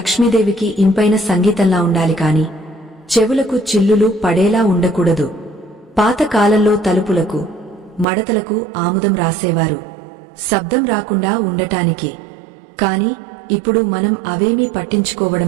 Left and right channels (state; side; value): drops out; left; at 8.1 s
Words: ఇంపైన సంగీతంలా ఉండాలి కాని చెవులకు చిల్లులు పడేలా ఉండకూడదు. పాత కాలంలో తలుపులకు మడతలకు ఆముదం రాసేవారు, శబ్దం రాకుండా ఉండటానికి. కాని ఇప్పుడు మనం అవేమీ